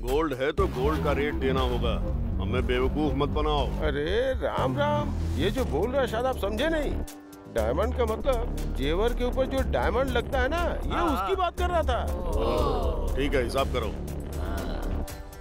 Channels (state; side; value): identical; both; correlation 1.00